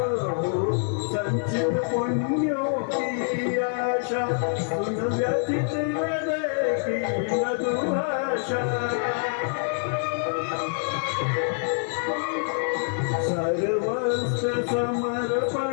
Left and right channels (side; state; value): right; silent; 61 dB below the other